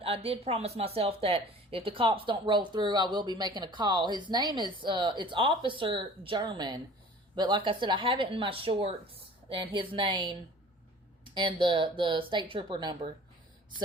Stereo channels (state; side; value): normal; both; correlation 0.46